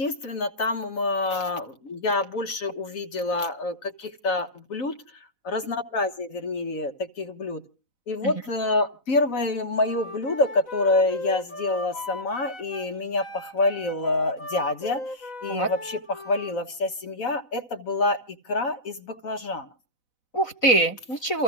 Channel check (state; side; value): late; right; 4.0 ms